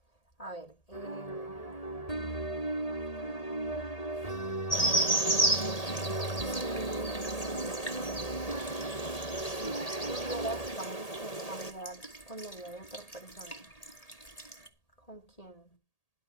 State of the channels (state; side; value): late; right; 1.8 ms